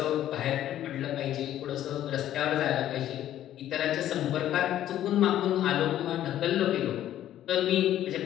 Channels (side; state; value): right; quieter; 12.2 dB